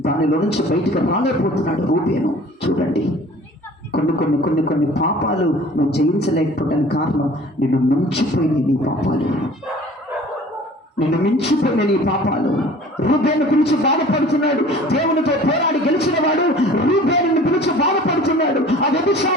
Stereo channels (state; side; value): normal; both; correlation 0.47